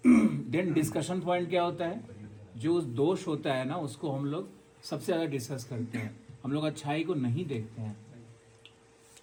देन डिस्कशन पॉइंट क्या होता है? जो उस दोष होता है ना, उसको हम लोग सबसे ज़्यादा डिस्कस करते हैं। हम लोग अच्छाई को नहीं देखते हैं।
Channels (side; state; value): both; identical; correlation 1.00